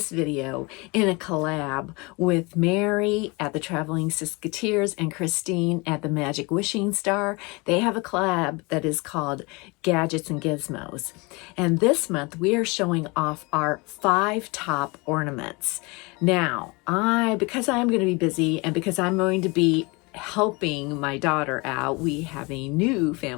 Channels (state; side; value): quieter; right; 26.9 dB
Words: video in a collab with Mary at the Traveling Sisketears and Christine at the Magic Wishing Starr. They have a collab that is called Gadgets and Gizmos. And this month we are showing off our 5 top ornaments. Now, because I'm going to be busy and because I'm going to be helping my daughter out, we have a new